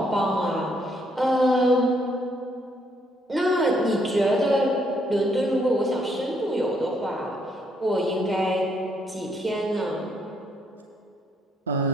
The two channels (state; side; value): normal; both; correlation 0.71